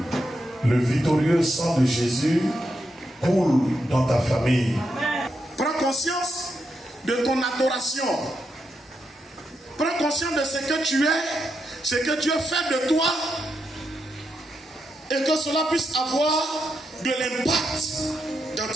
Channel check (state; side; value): normal; both; correlation 0.83